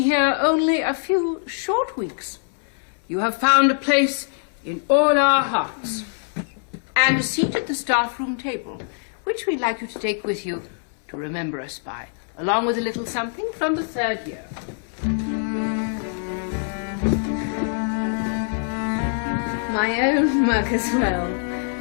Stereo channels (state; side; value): silent; right; 60 dB below the other